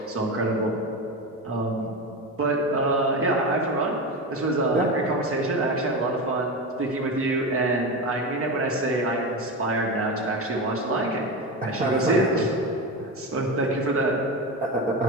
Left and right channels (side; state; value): both; normal; correlation 0.20